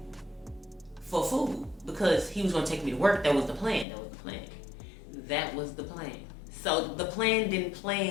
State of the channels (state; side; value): drops out; right; at 3.9 s